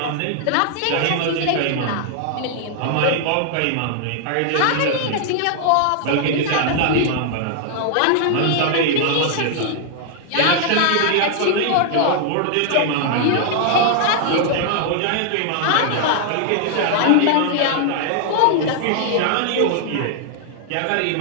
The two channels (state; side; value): different; both; correlation 0.00